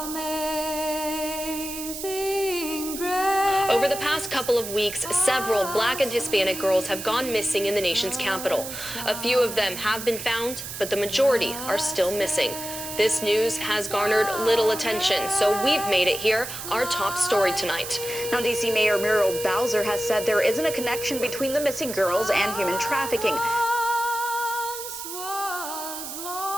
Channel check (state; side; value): noise; right; hiss, 8 dB below the sound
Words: grace. Over the past couple of weeks, several Black and Hispanic girls have gone missing in the nation's capital. A few of them have been found, but the majority are still missing. This news has garnered little attention, so we've made it here our top story tonight. Now, D.C. Mayor Muriel Bowser has said there isn't a connection between the missing girls and human trafficking. Was